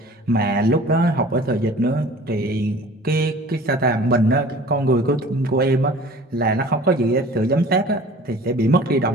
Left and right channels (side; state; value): both; normal; correlation 0.45